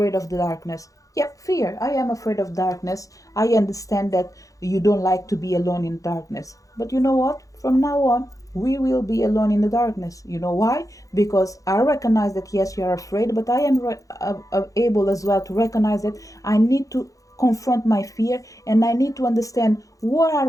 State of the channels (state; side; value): late; right; 0.16 ms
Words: of the darkness. Yep, fear. I am afraid of darkness. I understand that you don't like to be alone in darkness. But you know what? From now on, we will be alone in the darkness. You know why? Because I recognize that yes, you are afraid, but I am able as well to recognize that I need to confront my fear and I need to understand what